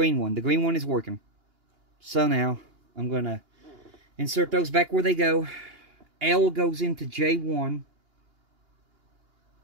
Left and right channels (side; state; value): left; late; 2.8 ms